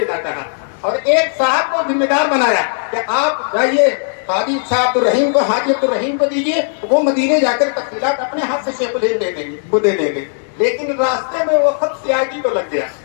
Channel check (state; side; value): silent; right; digital silence